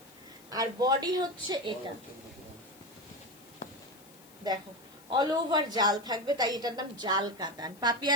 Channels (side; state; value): left; noise; hiss, 24 dB below the sound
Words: আর বডি হচ্ছে এটা। দেখো অল ওভার জাল থাকবে, তাই এটার নাম জাল কাতান।